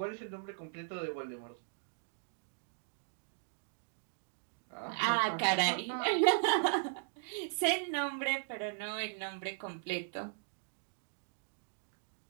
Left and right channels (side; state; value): left; silent; digital silence